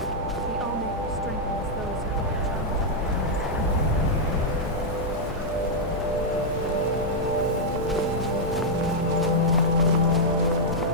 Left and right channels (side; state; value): left; noise; hum, 10 dB below the sound